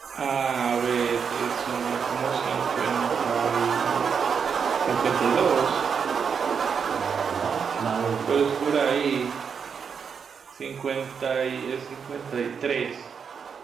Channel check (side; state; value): left; quieter; 6.5 dB